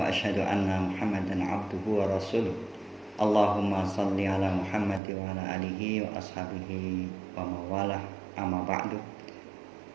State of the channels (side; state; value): left; drops out; at 5.0 s